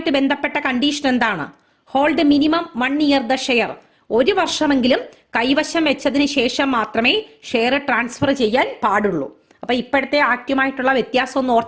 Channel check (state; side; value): identical; both; correlation 1.00